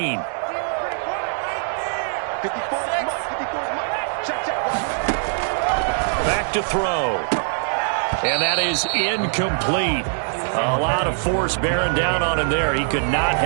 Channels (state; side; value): silent; left; digital silence